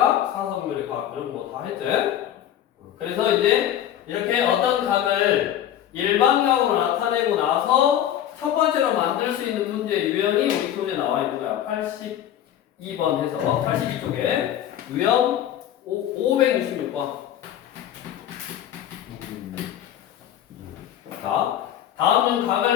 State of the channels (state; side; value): quieter; right; 11.1 dB